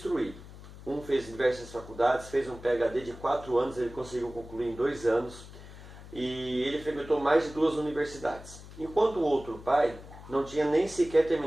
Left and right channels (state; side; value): noise; left; hum, 16 dB below the sound